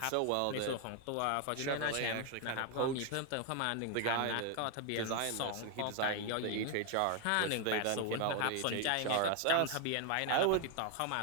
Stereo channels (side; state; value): both; different; correlation 0.00